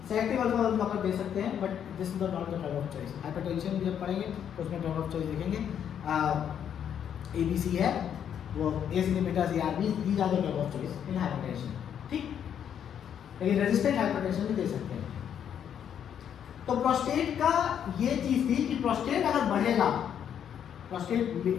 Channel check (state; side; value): quieter; right; 8.9 dB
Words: सेलेक्टिव अल्फा 1 ब्लॉकर दे सकते हैं, but this is not the drug of choice. Hypertension जब पढ़ेंगे तो उसमें ड्रग ऑफ चॉइस देखेंगे। ABC है वो, ACE inhibitors, ARBs, these are the drug of choice in hypertension. ठीक, लेकिन रेजिस्टेंट हाइपरटेंशन भी दे सकते हैं। तो प्रोस्टेट का ये चीज थी कि प्रोस्टेट अगर बढ़ेगा, prostate